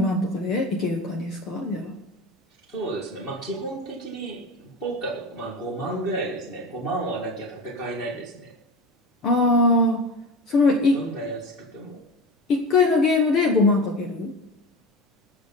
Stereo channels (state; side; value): normal; both; correlation 0.28